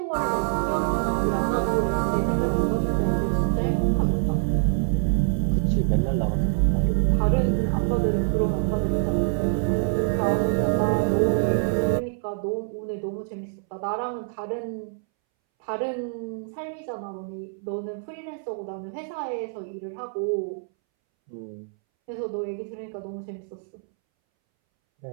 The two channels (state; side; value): silent; left; 61 dB below the other